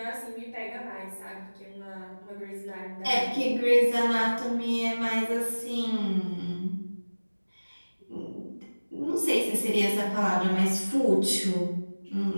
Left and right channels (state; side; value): inverted; both; correlation -1.00